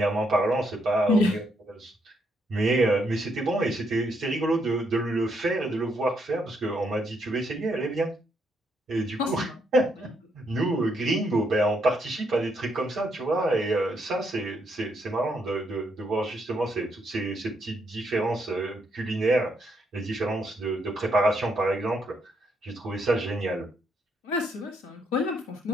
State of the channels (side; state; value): both; normal; correlation 0.76